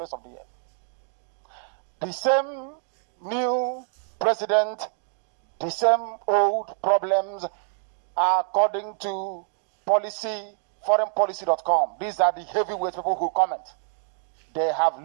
of the earth. The same new president, the same old problems, according to foreignpolicy.com. These are the heavyweight people who comment. They have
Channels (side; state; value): left; silent; digital silence